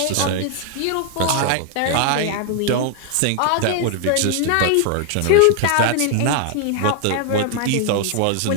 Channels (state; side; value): different; both; correlation 0.00